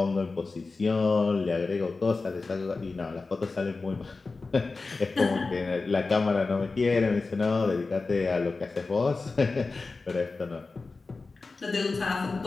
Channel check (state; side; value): quieter; right; 3.9 dB